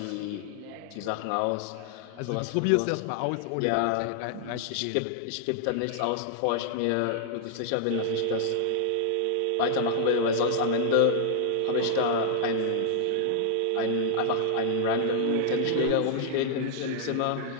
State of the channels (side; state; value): both; different; correlation -0.01